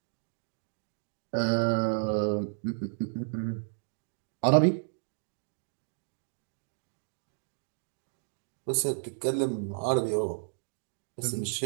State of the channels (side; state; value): left; silent; digital silence